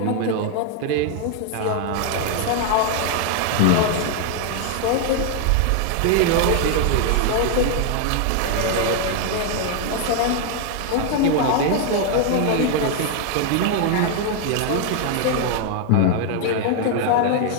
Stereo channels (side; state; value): both; different; correlation 0.00